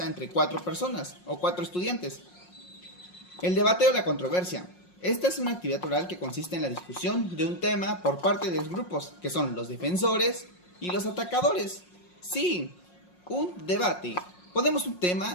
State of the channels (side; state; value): right; late; 5.6 ms